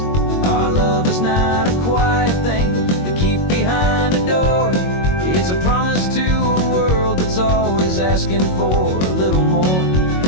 asking for a little more.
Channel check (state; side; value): late; right; 22 ms